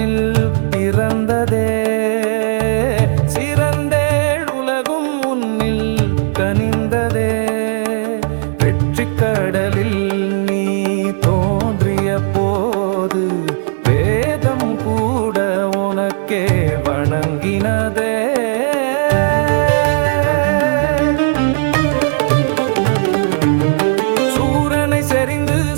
பிறந்ததே சிறந்தேள் உலகும் உன்னில் கனிந்ததே வெற்றி கடலில் நீ தோன்றிய போது வேதம் கூட உனக்கே வணங்கினதே சூரனை செறிந்து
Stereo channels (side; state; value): left; silent; digital silence